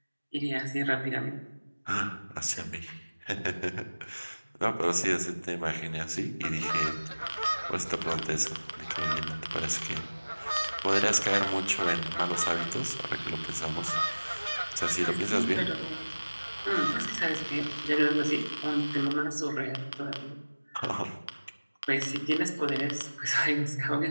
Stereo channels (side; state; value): both; inverted; correlation -1.00